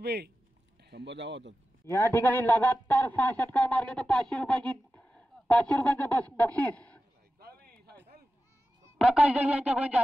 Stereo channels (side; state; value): both; normal; correlation 0.93